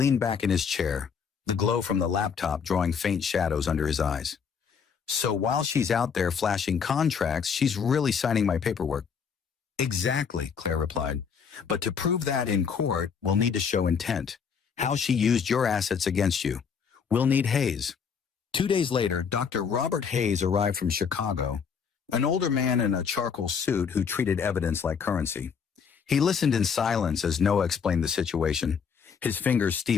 back in his chair, the glow from the laptop drawing faint shadows under his eyes. So while she's out there flashing contracts, she's really signing my paperwork. Exactly, Claire replied. But to prove that in court, we'll need to show intent, how she used your assets against you. We'll need Hayes. 2 days later, Dr. Robert Hayes arrived from Chicago, an older man in a charcoal suit who treated evidence like currency. He listened in silence as Noah explained the situation, his fingers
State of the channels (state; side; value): quieter; right; 6.5 dB